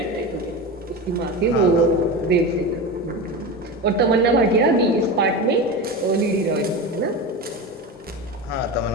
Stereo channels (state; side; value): normal; both; correlation 0.24